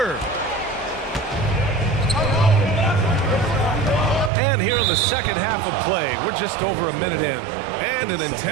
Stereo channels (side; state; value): left; drops out; at 4.3 s